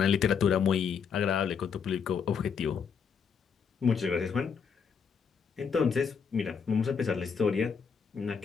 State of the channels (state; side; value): quieter; right; 6.4 dB